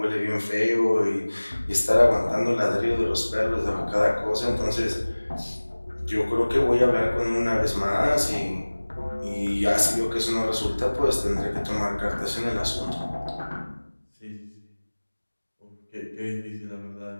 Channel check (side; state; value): both; inverted; correlation -1.00